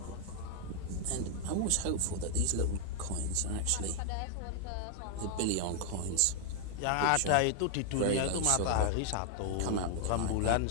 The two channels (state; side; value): different; both; correlation 0.00